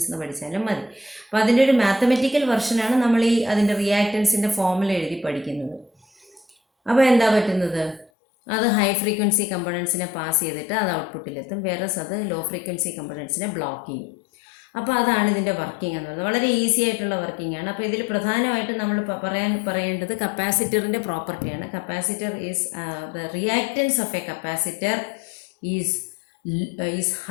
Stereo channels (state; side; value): drops out; right; at 8.1 s